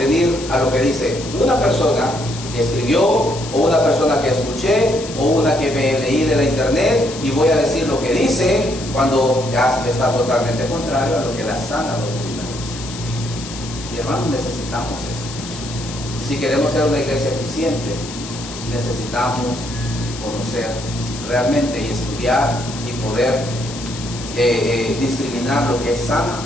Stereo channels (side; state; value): left; noise; hiss, 12 dB below the sound